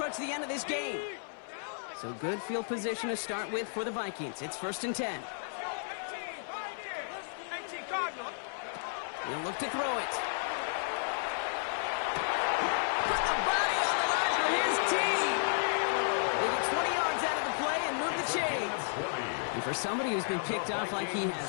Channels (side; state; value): right; silent; 56 dB below the other